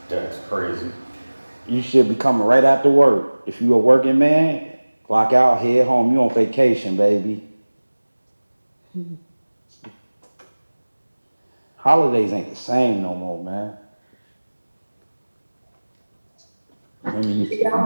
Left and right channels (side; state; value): both; inverted; correlation -1.00